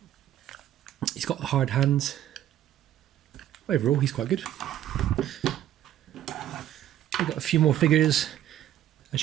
He's got hard hands. Overall he's quite good. We've got a few more figures. As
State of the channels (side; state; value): left; quieter; 11.9 dB